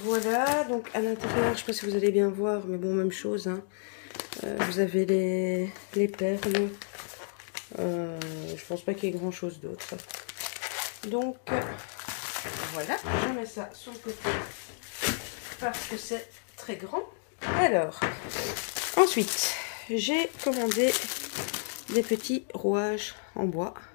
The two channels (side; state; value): right; silent; digital silence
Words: voilà, donc à l'intérieur, je ne sais pas si vous allez bien voir, mais bon, même chose, hein. Vous avez les perles. Je pense pas qu'il y ait grand chose d'autre. Donc voilà, je mets ça sur le côté parce que c'est très grand. Alors, ensuite, j'ai commandé des petits rouages en bois.